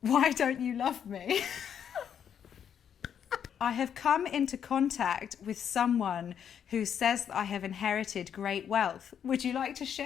Why don't you love me? I have come into contact with someone who says that I have inherited great wealth. Would you like to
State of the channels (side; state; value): right; quieter; 8.5 dB